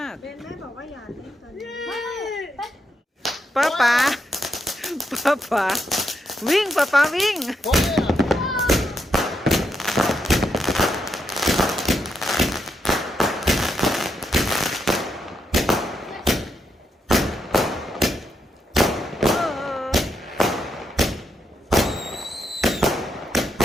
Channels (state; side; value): normal; both; correlation 0.81